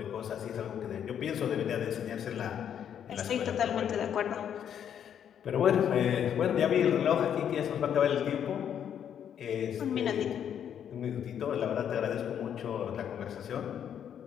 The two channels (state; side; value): quieter; right; 9.0 dB